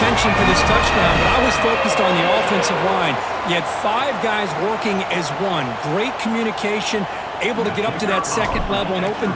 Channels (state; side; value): identical; both; correlation 1.00